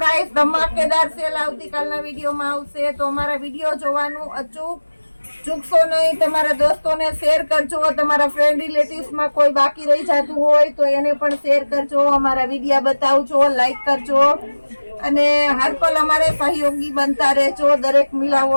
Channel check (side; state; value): both; inverted; correlation -1.00